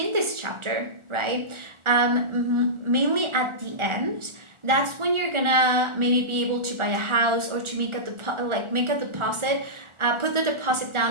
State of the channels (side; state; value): left; late; 1.4 ms